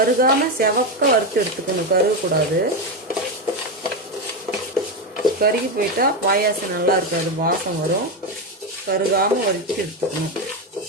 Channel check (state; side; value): normal; both; correlation 0.11